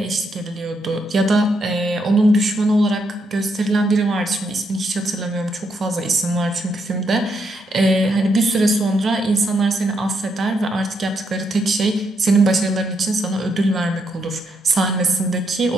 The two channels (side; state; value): both; normal; correlation 0.78